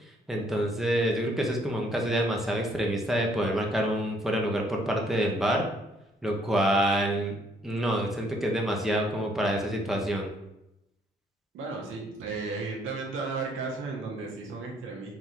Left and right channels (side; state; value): both; normal; correlation 0.66